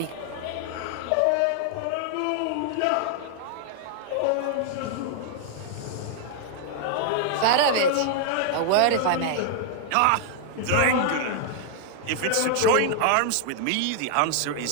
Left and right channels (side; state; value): both; different; correlation 0.00